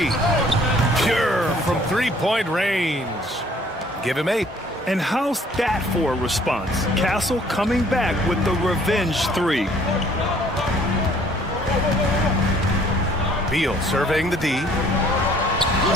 Pure from 3-point range. Give him 8. And how's that for a response? Castle coming back with the revenge 3. Beal surveying the D.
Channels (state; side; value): normal; both; correlation 0.58